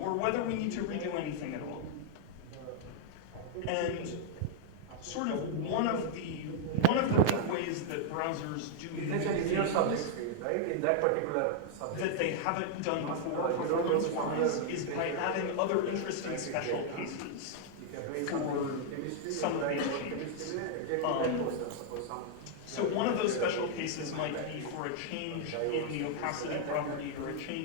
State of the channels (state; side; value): different; both; correlation 0.00